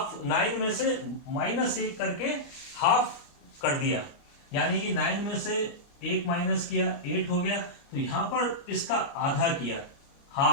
9 में से -1 करके हाफ कर दिया, यानी कि 9 में से 1 माइनस किया, 8 हो गया। तो यहां पर इसका आधा किया,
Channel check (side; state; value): right; late; 29 ms